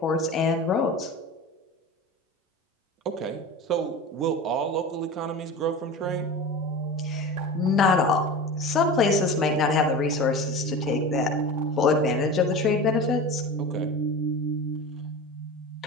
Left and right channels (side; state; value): both; normal; correlation 0.31